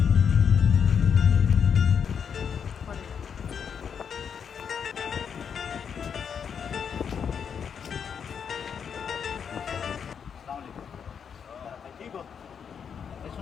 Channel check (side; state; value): right; quieter; 7.2 dB